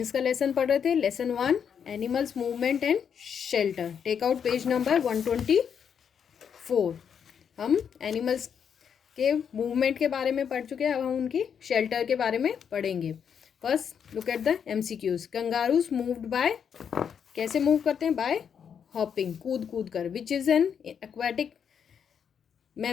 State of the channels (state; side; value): quieter; right; 7.5 dB